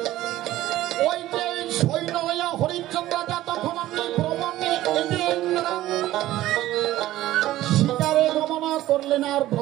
ওই যে সৈন্য লইয়া হরিশ্চন্দ্র রাজা তখন আপনি ভ্রমণে শিকারে গমন করলেন আর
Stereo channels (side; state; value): left; quieter; 15.1 dB